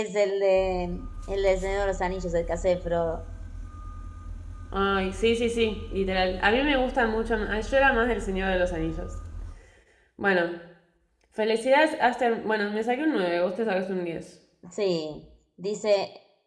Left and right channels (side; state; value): both; identical; correlation 1.00